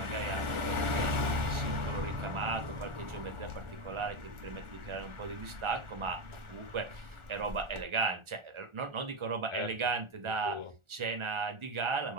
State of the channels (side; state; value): left; late; 1.4 ms